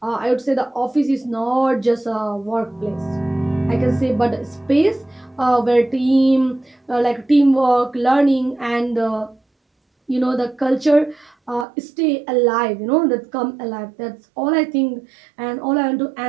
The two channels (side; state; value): left; drops out; at 11.7 s